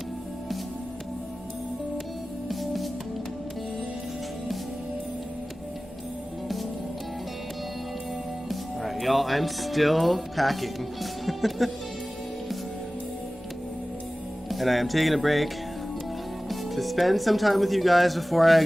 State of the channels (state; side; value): normal; both; correlation 0.97